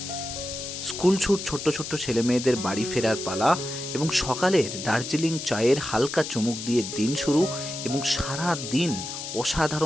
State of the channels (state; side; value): noise; left; hiss, 7 dB below the sound